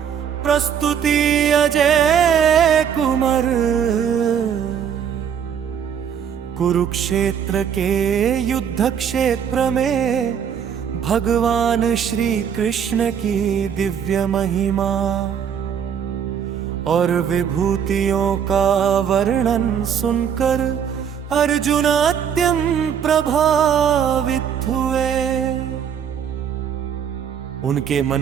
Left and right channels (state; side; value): quieter; left; 8.1 dB